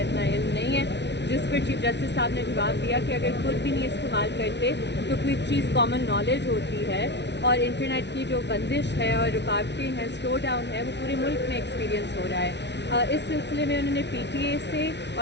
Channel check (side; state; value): right; late; 0.50 ms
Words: علم نہیں ہے. جس پر چیف جسٹس صاحب نے جواب دیا کہ اگر خود بھی نہیں استعمال کرتے تو کوئی چیز کامن نالج ہوتی ہے, اور انٹرنیٹ کی جو بندش ہے اور رکاوٹیں ہیں, سلو ڈاؤن ہے, وہ پورے ملک میں ایکسپیرینس ہو رہا ہے. اس سلسلے میں انہوں نے پی ٹی اے سے